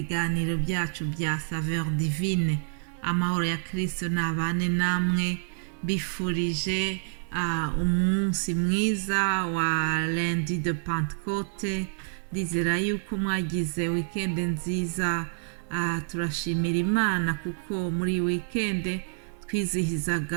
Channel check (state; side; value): silent; left; 60 dB below the other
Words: byacu bya Saveur Divine. Amahoro ya Kristo nabane namwe, bifurije umunsi mwiza wa lundi de Pentecôte. Ndizera yuko mwagize weekend nziza. Turashimira Imana kuko muri weekend